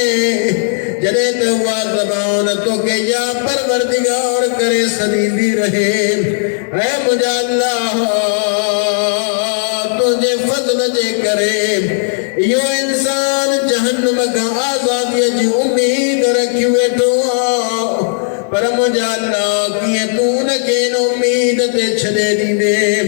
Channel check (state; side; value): silent; right; digital silence